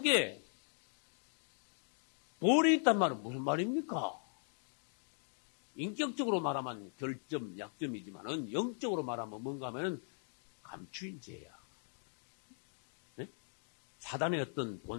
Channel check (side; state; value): right; silent; 51 dB below the other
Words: 돌이 있단 말은 무슨 말입니까? 인격적으로 말하면 결점, 약점이지만은 영적으로 말하면 뭔가 하면은 감추인 죄야. 네? 사단의 어떤